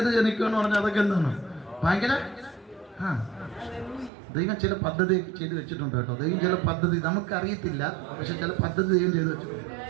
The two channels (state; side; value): drops out; left; at 4.1 s